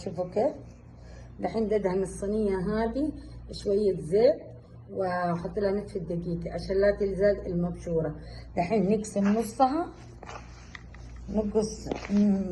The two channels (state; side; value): identical; both; correlation 1.00